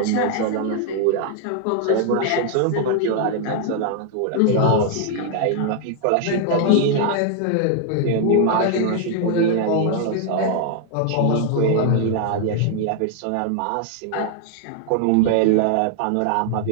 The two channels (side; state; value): both; different; correlation 0.00